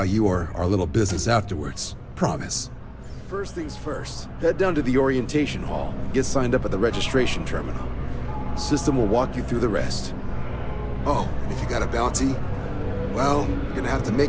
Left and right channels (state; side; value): identical; both; correlation 1.00